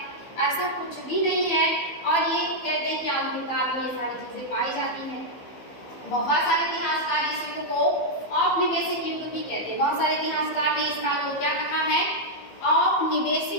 ऐसा कुछ भी नहीं है। और ये कहते हैं कि आधुनिक काल में ये सारी चीजें पाई जाती हैं। बहुत सारे इतिहासकार इस युग को औपनिवेशिक युग भी कहते हैं। बहुत सारे इतिहासकार ने इस काल को क्या कहा है?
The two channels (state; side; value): late; right; 15 ms